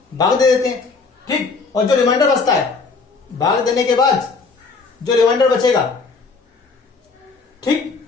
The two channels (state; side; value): quieter; right; 4.5 dB